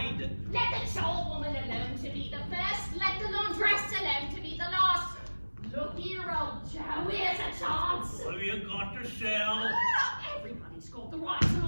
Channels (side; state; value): both; inverted; correlation -1.00